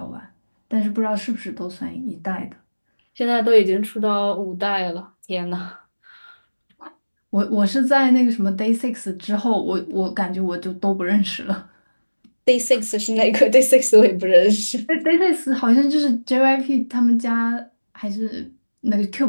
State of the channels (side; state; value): both; inverted; correlation -1.00